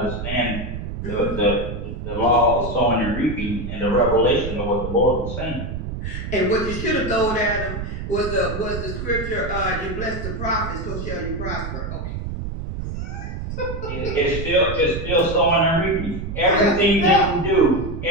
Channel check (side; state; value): right; noise; rumble, 6 dB below the sound